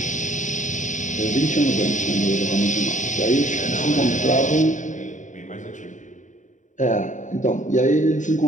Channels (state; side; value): late; right; 0.36 ms